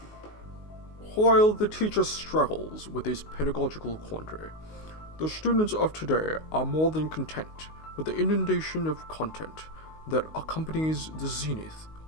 While the teacher struggles with this pedagogical quandary, the students of today are more than content with the inundation of content that accompanies the zenith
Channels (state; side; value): late; right; 19 ms